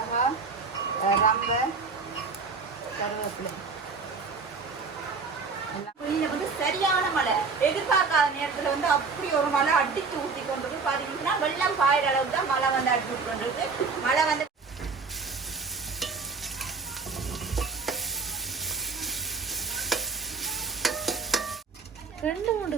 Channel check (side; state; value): left; quieter; 4.7 dB